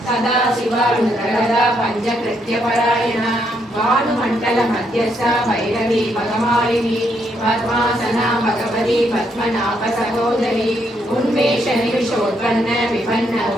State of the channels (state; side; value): normal; both; correlation 0.75